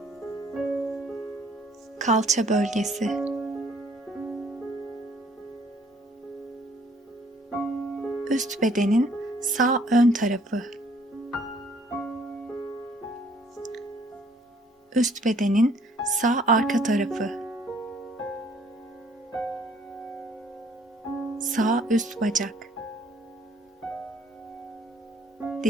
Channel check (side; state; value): both; normal; correlation 0.61